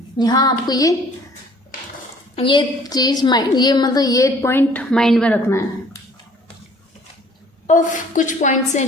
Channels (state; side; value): normal; both; correlation 0.55